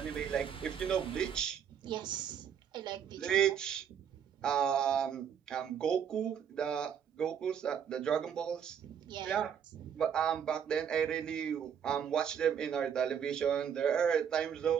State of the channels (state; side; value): quieter; left; 8.2 dB